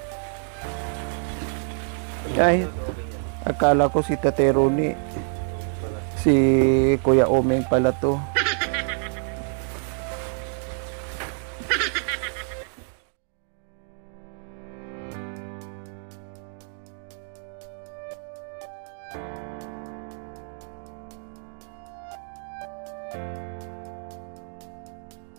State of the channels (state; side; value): silent; left; 56 dB below the other